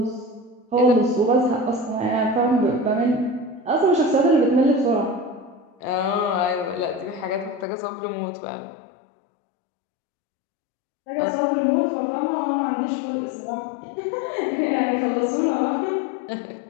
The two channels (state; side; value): drops out; right; at 7.7 s